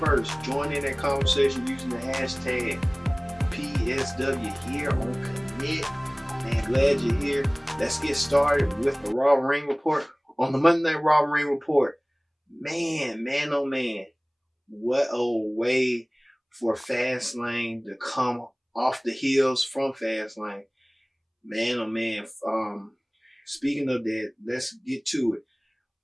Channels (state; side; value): identical; both; correlation 1.00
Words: join in that conversation using the hashtag PSW here on Commit. Man, glad you're here. Let's get started with the Raw Ring Report. On the Monday Night Raw Ring Report, man, oh man, what a way for Fastlane to come off the heels from Fastlane. Man, oh man. Speaking of that, let's get to it.